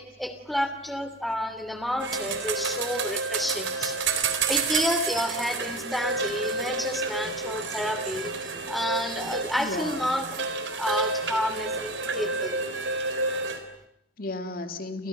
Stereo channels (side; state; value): both; normal; correlation 0.30